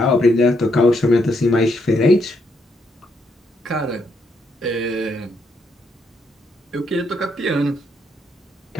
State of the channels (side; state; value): both; normal; correlation 0.76